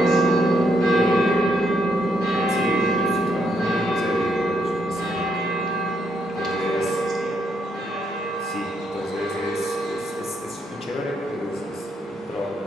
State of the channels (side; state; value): both; normal; correlation 0.76